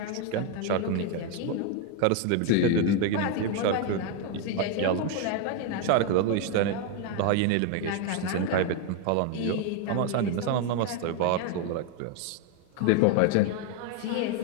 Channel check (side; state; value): both; different; correlation 0.01